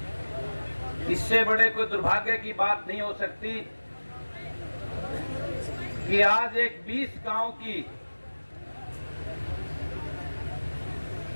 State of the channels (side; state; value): both; inverted; correlation -1.00